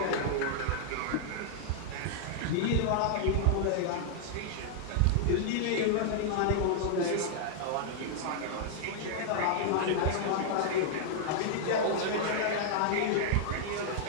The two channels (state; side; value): different; both; correlation -0.01